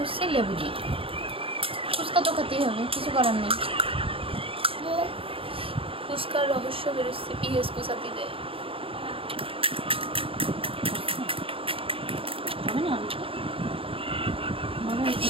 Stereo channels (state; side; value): late; left; 0.27 ms